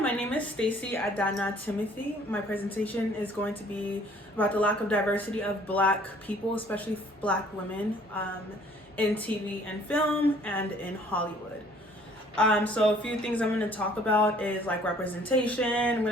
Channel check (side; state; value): both; normal; correlation 0.57